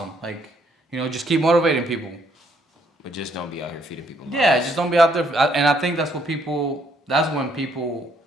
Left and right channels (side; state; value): both; normal; correlation 0.69